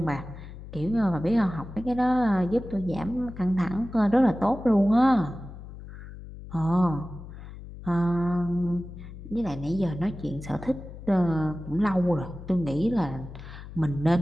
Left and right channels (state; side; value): noise; left; hum, 14 dB below the sound